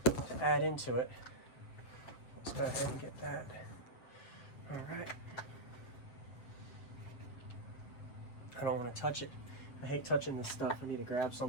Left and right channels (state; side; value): late; right; 7.9 ms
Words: to add into it. Let's go ahead and get that. All right. I don't want to touch it. I hate touching this stuff. I need to grab